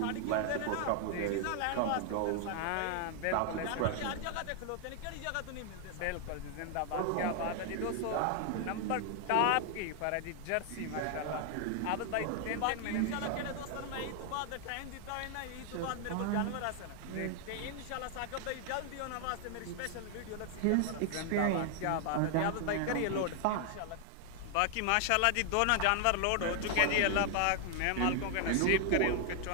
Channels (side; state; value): both; different; correlation 0.00